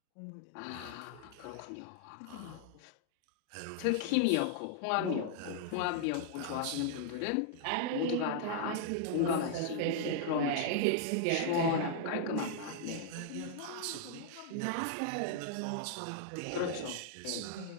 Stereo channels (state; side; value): different; both; correlation -0.01